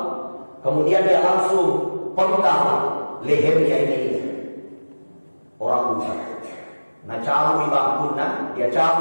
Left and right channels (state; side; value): inverted; both; correlation -1.00